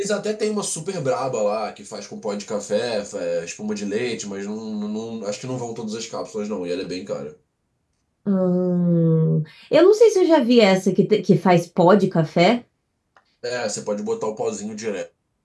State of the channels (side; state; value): both; identical; correlation 1.00